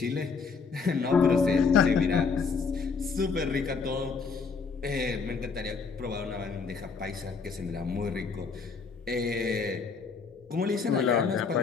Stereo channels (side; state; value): right; quieter; 5.2 dB